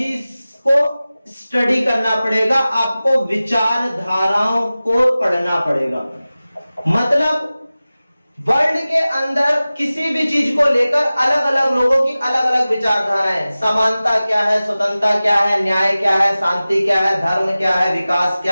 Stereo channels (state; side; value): inverted; both; correlation -0.97